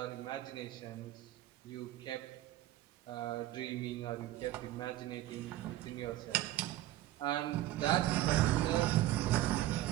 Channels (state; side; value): quieter; left; 14.6 dB